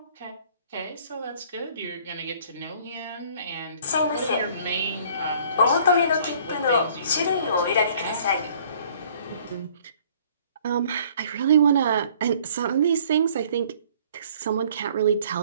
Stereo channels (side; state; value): both; inverted; correlation -0.56